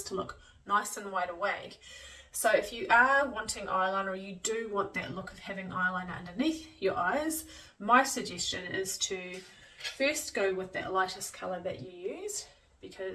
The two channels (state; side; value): identical; both; correlation 1.00